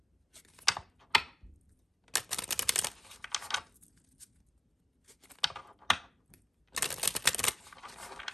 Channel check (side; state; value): both; normal; correlation 0.92